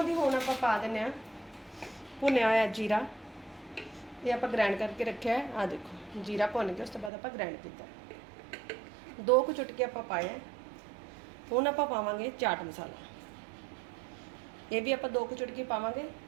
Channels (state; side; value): drops out; left; at 7.1 s